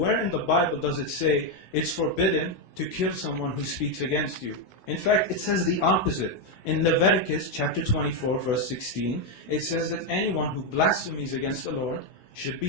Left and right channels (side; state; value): right; late; 16 ms